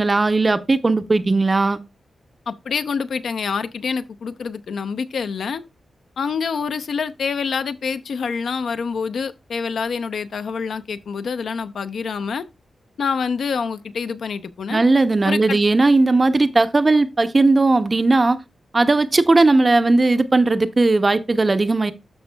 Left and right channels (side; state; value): both; normal; correlation 0.94